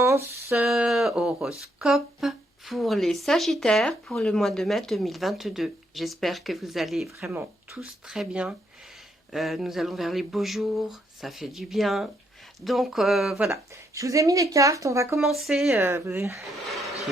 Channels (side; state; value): both; normal; correlation 0.75